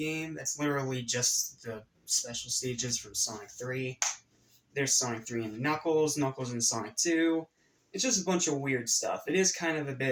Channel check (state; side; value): identical; both; correlation 1.00